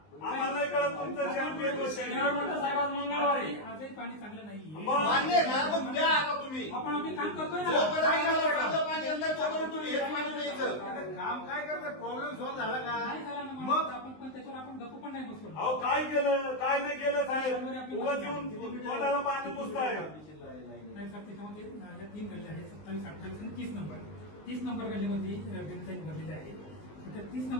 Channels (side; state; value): right; late; 19 ms